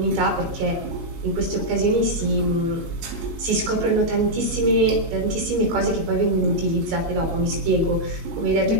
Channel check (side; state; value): left; late; 19 ms